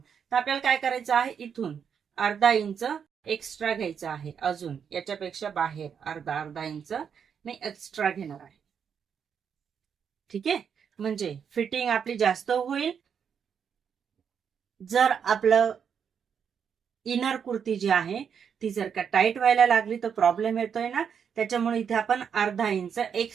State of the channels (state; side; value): quieter; left; 7.3 dB